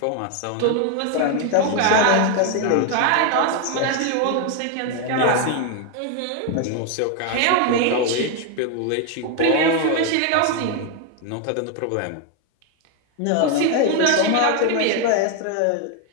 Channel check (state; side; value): different; both; correlation 0.01